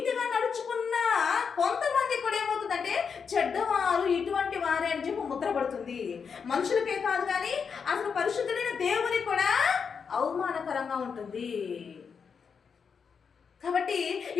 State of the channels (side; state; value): right; quieter; 6.1 dB